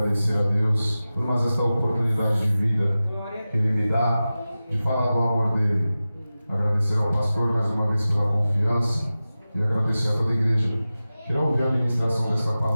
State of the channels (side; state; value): both; inverted; correlation -0.95